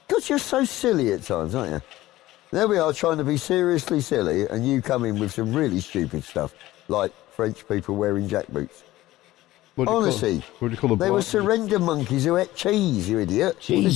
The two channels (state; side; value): quieter; right; 16.5 dB